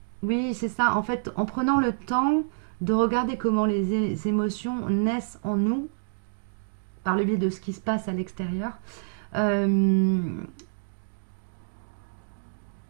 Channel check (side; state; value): left; silent; digital silence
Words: Oui, c'est ça. En fait, en prenant le temps de regarder comment les émotions naissent en nous, par le biais de ce qui se passe à l'extérieur, on